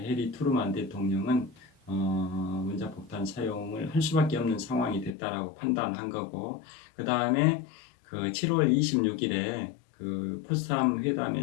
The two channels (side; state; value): right; drops out; at 5.1 s